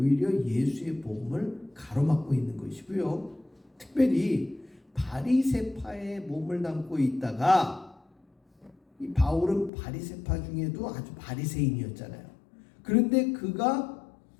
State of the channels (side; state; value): right; drops out; at 9.7 s